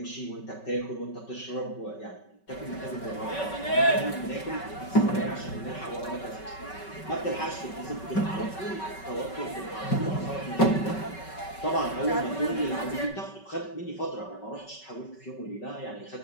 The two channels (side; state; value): right; late; 5.3 ms